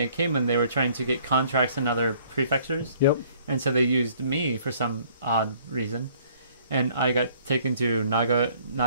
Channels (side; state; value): both; inverted; correlation -0.59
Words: I came in, they were trying to get contracts in other prefectures. Yep. And so they used me for some odd reason, and I got taken to